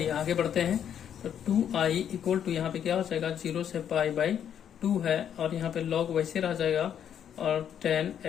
आगे बढ़ते हैं, तो 2i इक्वल टू यहाँ पे क्या हो जाएगा, 0 से π/2 है, और यहाँ पे log वैसे रह जाएगा, और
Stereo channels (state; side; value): quieter; right; 9.1 dB